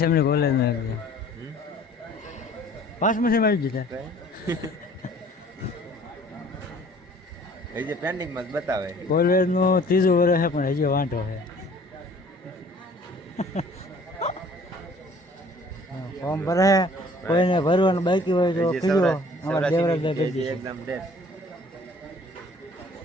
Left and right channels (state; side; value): normal; both; correlation 0.54